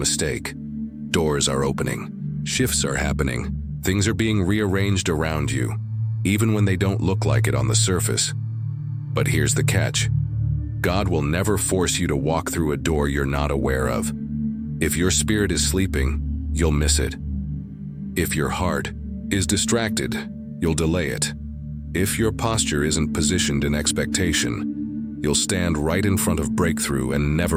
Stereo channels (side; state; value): both; identical; correlation 1.00